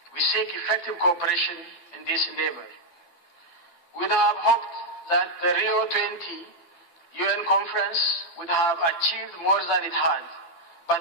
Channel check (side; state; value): right; late; 12 ms